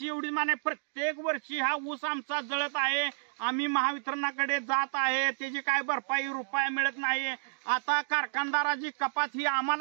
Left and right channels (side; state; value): left; silent; digital silence